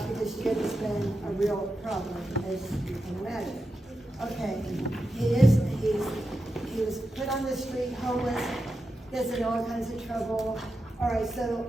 Jim has been a real problem, as you can imagine. Okay, he was put on the street, homeless, gets in all kinds of trouble. All right, so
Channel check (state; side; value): normal; both; correlation 0.89